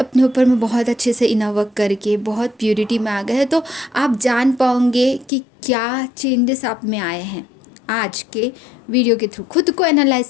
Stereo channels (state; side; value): drops out; right; at 5.3 s